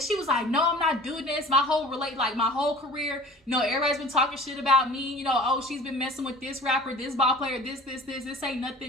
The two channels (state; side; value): normal; both; correlation 0.43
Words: was like, no, I'm not doing this. My whole career, you know, everybody's been talking shit about me. You know, oh, she's been messing with this rapper, this ball player, this ain't